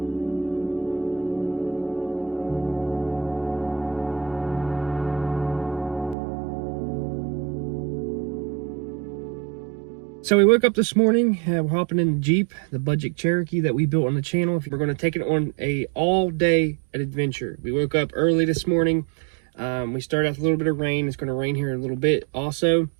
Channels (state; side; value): drops out; left; at 6.2 s